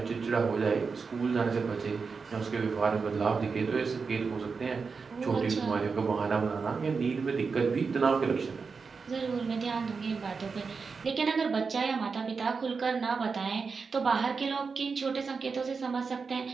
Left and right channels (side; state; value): left; quieter; 5.0 dB